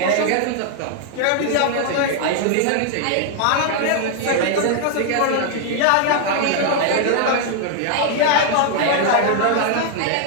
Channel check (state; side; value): different; both; correlation 0.00